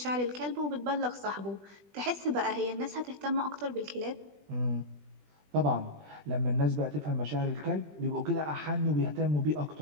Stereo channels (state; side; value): late; left; 20 ms